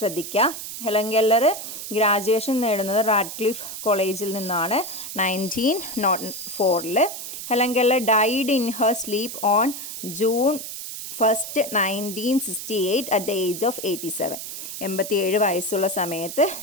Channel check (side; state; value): right; noise; hiss, 8 dB below the sound